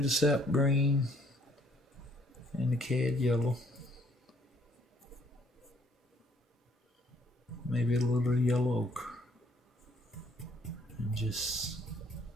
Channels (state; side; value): normal; both; correlation 0.64